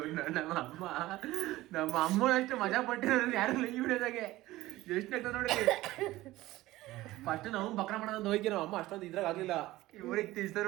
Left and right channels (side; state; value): left; quieter; 17.3 dB